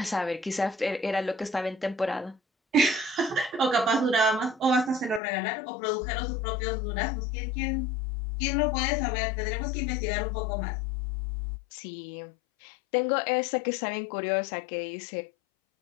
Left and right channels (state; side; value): drops out; right; at 5.2 s